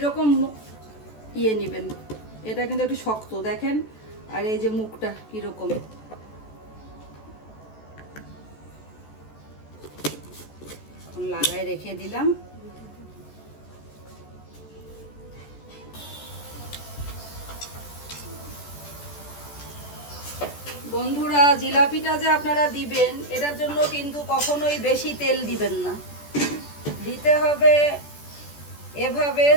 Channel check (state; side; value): late; right; 14 ms